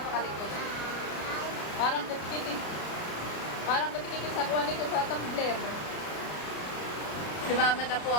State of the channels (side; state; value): right; late; 33 ms